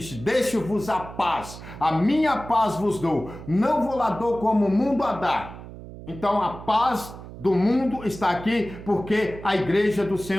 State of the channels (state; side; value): noise; right; hum, 14 dB below the sound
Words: deixo-vos a paz, a minha paz vos dou, não vou lá dou como o mundo a dá. Então a paz do mundo está aqui, porque a igreja do